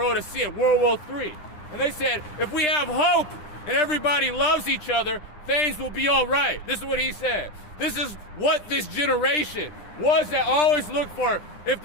is seeing World War III. And they said, if we have hope and everybody loves each other, things will be all right. This is what he said. This is what this generation was that always look for. If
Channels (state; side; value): late; right; 9.9 ms